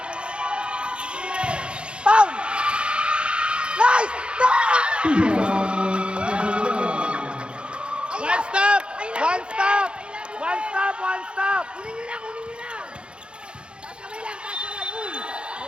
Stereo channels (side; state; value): left; late; 0.055 ms